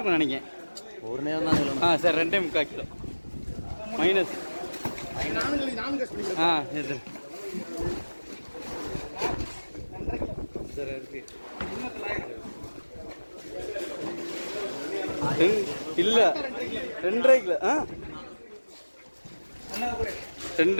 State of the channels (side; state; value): both; inverted; correlation -1.00